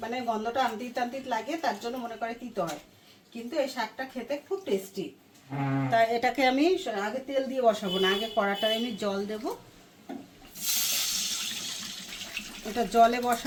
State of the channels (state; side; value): identical; both; correlation 1.00